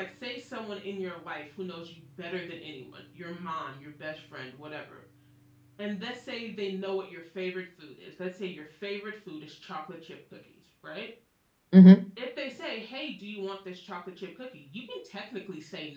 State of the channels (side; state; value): both; identical; correlation 1.00